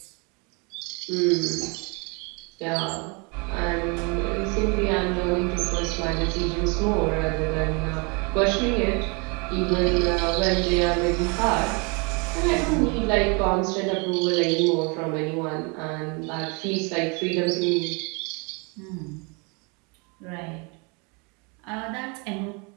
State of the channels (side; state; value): left; quieter; 31.7 dB